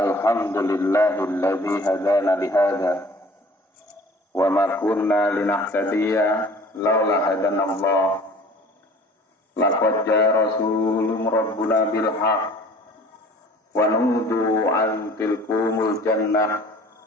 hadana lihada wa ma kunna linahtadiya laula hadanallah. Laqad jaa rasulun rabbuna bil haqq wa nudu an tilkumul jannah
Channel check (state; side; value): normal; both; correlation 0.48